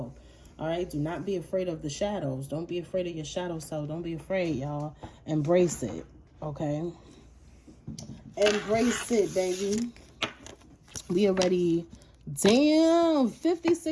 All right? Do not be afraid of the shadows. Don't be afraid of your shadow self. Don't be afraid, y'all. Embrace it, okay? Embrace it, baby. We already, damn,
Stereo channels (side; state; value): both; identical; correlation 1.00